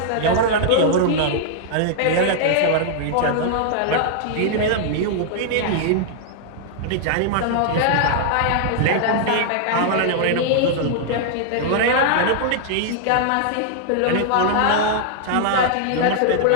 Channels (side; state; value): both; different; correlation -0.01